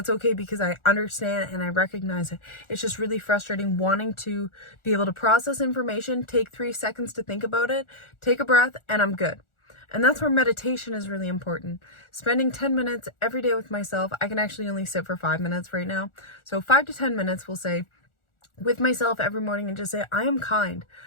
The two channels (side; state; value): right; late; 1.4 ms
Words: okay, because I understand and I recognize it. It's just really frustrating wanting to be able to process information, take 3 seconds to think about it, take a breath, and I'm good. And that's where meditation is really important. Spending 10 minutes every day with myself. I can actually only sit for 5 minutes right now. So 5 to 10 minutes, we'll say, with myself every morning, and just say, I am kind.